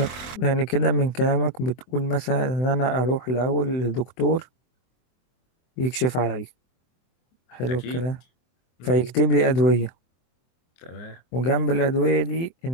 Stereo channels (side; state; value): right; late; 24 ms